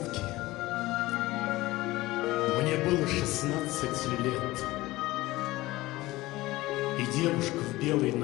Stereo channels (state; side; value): quieter; right; 18.7 dB